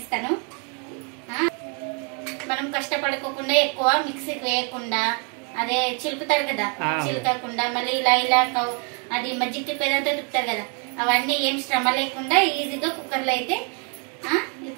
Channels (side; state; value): left; quieter; 38.2 dB